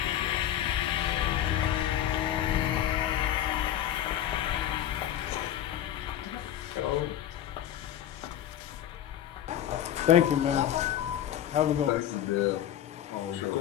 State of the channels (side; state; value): right; quieter; 11.3 dB